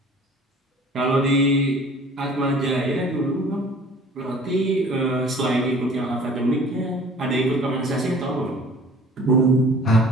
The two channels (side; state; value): both; normal; correlation 0.48